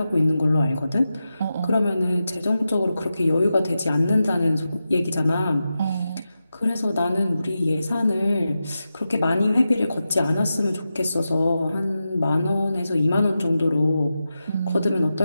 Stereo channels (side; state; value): both; inverted; correlation -0.91